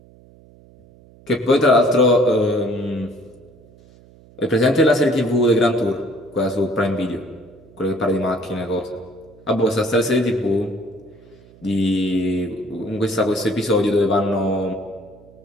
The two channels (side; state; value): right; noise; hum, 25 dB below the sound